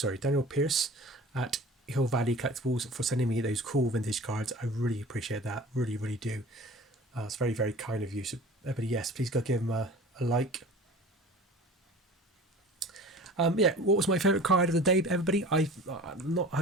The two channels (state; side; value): normal; both; correlation 0.41